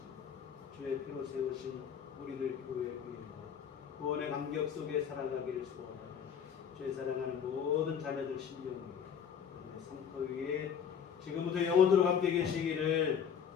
주의 피로 세우신 우리들 교회 위에와 구원의 감격 속에 살아가기를 소원하는 주의 사랑하는 모든 자녀들 심령 위에 성터 위에 지금부터 영원토록 함께 계시기를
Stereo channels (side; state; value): right; quieter; 7.7 dB